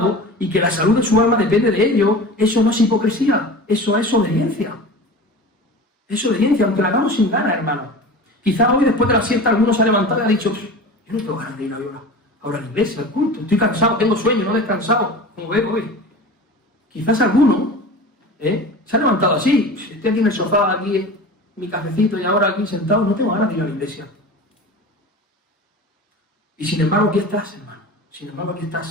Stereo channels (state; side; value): normal; both; correlation 0.35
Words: y que la salud de su alma depende de ello, eso no es hipocresía, eso es obediencia. Es obediencia, aunque la hagamos sin ganas, hermano. Quizá hoy, después de la siesta, alguno se ha levantado y ha dicho, yo no tengo ganas de ir ahora a la iglesia, al culto, estoy cansado, tengo sueño, no he descansado, como veo hoy. Quizás alguno se ha levantado así, estoy aquí en el sofá, aquí en mi cafecito y ahora aquí sentado, no tengo ganas de ir a la iglesia. Y sin embargo, aquí estás, hermano. Sin embargo, aquí estás